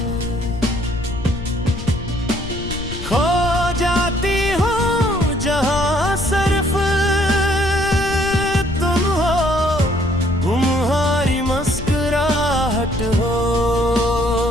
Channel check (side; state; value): left; noise; rumble, 9 dB below the sound